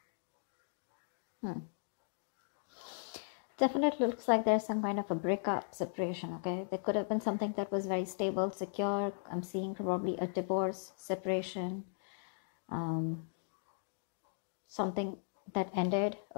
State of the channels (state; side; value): silent; right; digital silence